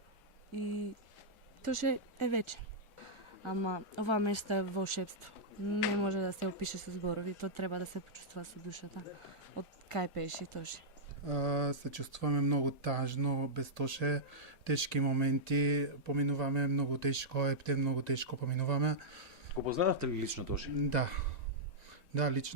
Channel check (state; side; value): normal; both; correlation -0.10